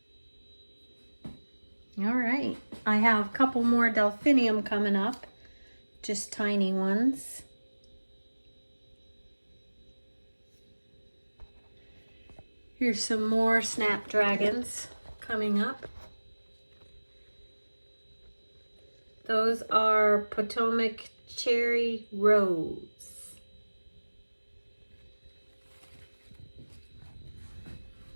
All right, I have a couple more delphinium coming up, just tiny ones. Here's some more snapdragons coming up. Those are Potomac Cherry Rose.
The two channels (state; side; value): inverted; both; correlation -1.00